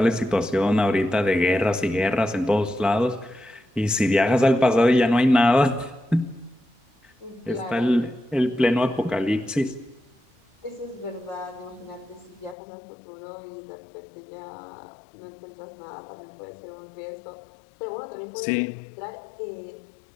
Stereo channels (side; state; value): right; drops out; at 12.6 s